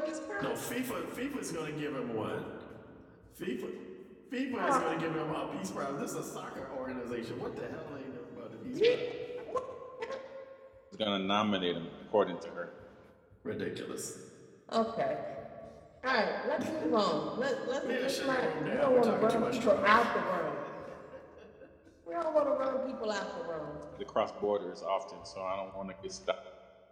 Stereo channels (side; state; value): both; identical; correlation 1.00